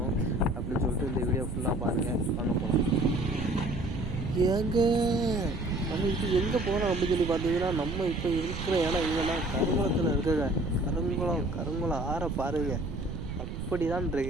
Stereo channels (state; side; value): noise; right; rumble, 6 dB below the sound